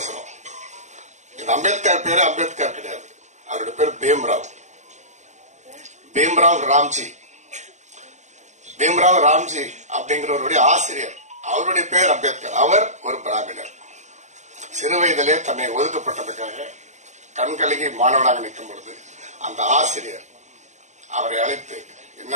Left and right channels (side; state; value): left; late; 0.34 ms